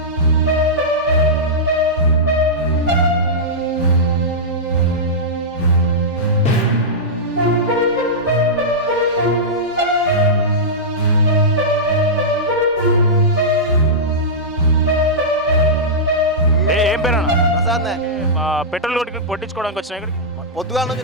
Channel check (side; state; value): both; normal; correlation -0.12